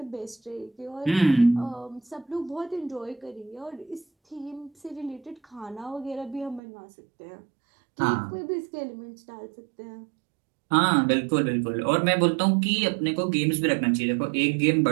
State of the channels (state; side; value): drops out; left; at 6.6 s